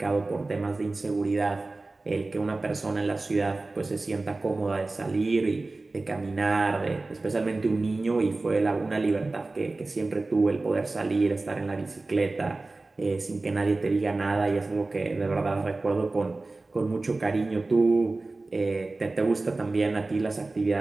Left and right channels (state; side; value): quieter; left; 3.3 dB